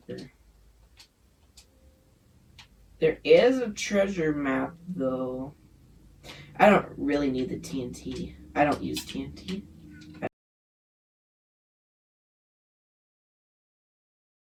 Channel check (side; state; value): both; identical; correlation 1.00